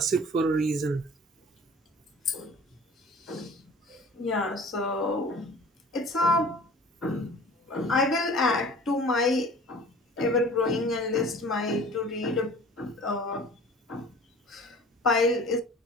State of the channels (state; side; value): normal; both; correlation 0.45